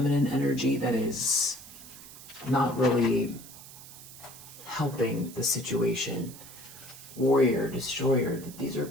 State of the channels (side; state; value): right; noise; hiss, 16 dB below the sound